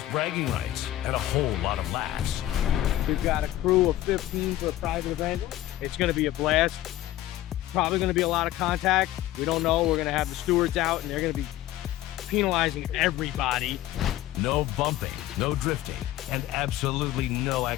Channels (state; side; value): quieter; right; 14.5 dB